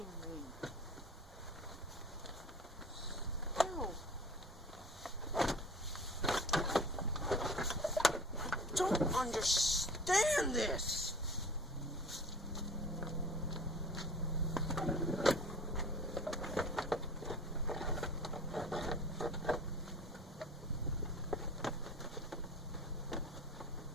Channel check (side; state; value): both; normal; correlation 0.41